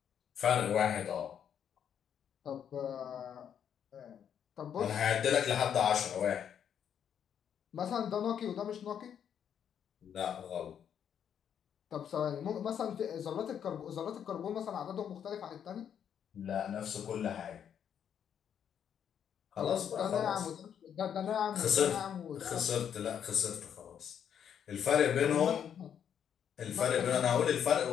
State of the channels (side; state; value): right; quieter; 8.6 dB